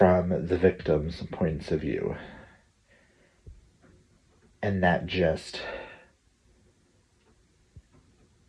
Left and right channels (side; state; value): both; identical; correlation 1.00